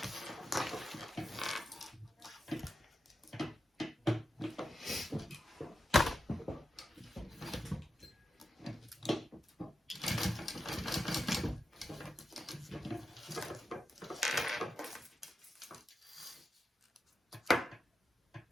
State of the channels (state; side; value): normal; both; correlation 0.89